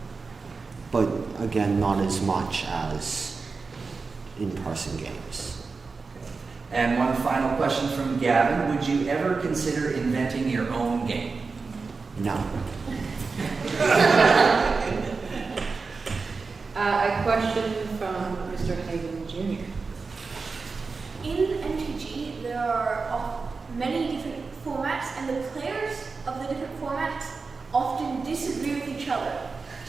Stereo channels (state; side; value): quieter; left; 4.4 dB